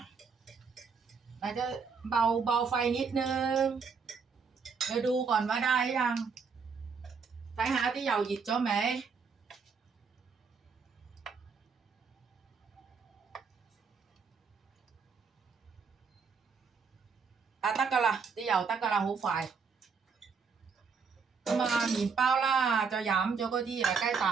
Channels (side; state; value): left; quieter; 5.5 dB